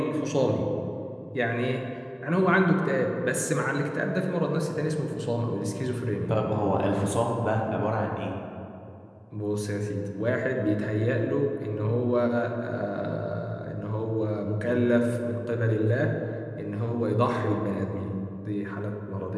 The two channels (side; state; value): both; identical; correlation 1.00